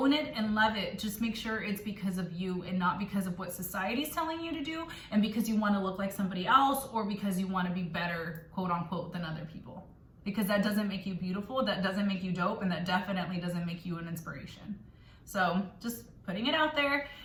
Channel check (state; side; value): identical; both; correlation 1.00